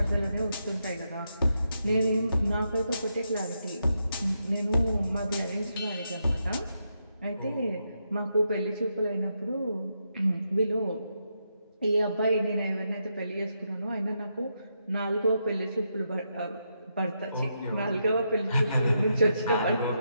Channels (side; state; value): both; inverted; correlation -0.83